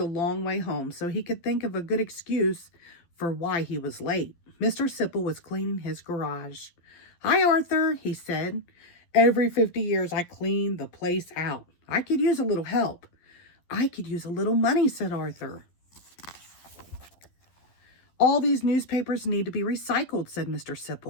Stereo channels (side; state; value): right; late; 12 ms